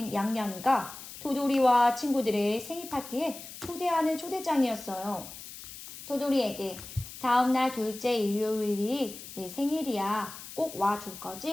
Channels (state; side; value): noise; left; hiss, 13 dB below the sound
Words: 양양이가 토돌이와 친구들의 생일 파티에 초대하는 초대장이었어요. 토돌이에게 다음날 둘째 일요일이 내 생일이야. 꼭 와줄